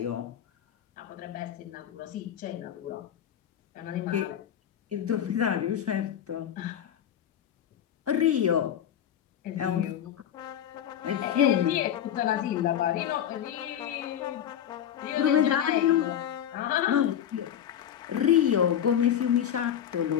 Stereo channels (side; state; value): right; quieter; 9.9 dB